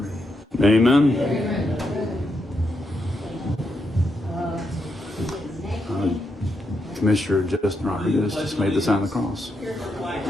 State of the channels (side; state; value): both; normal; correlation 0.82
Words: Amen. Amen. Commissioner Justin Rodriguez just made the sign of the cross.